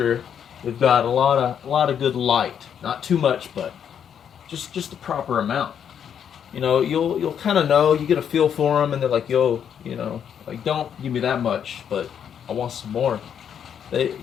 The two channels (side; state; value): right; quieter; 8.4 dB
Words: we've got a lot of good light, not too much, but just the proper amount. You know, you'll kind of know, you get a feel for them, and they're like, yo, you know, like, don't give me that much, but I want some more.